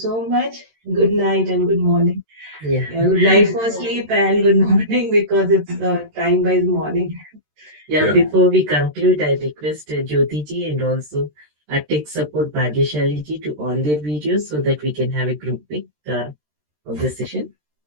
much. Good night and good morning. Yeah. Good night for sleep and good morning because it's time-wise morning. Yeah, before we conclude, I request Jyoti ji and also tech support Bhagyashali ji to on their videos so that we can have a group pic of the session.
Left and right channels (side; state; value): left; late; 13 ms